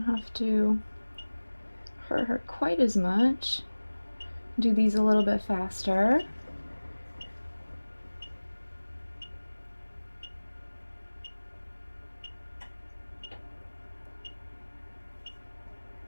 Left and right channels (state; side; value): inverted; both; correlation -1.00